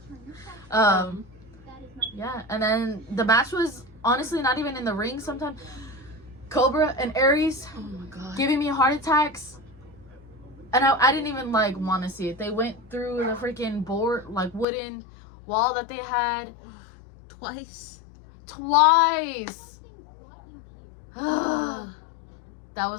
Yeah, and then the match was honestly not even in the ring. Sometimes Cobra and Aries Oh my god. giving me heart attacks, and I didn't even like want to see it. They went through the freaking board, like wooden wall that they had Twice. That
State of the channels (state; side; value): drops out; right; at 14.7 s